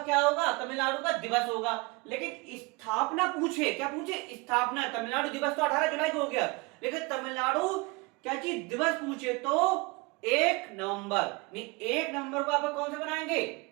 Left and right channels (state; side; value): quieter; left; 26.4 dB